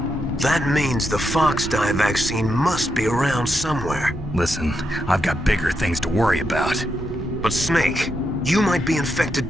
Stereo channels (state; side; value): normal; both; correlation 0.83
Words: That means the Fox Dye vaccine must be around somewhere. Listen, I've got bigger things to worry about. But Snake, you might be infected